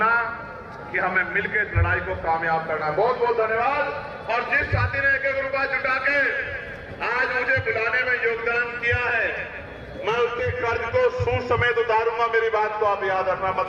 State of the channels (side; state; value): both; identical; correlation 1.00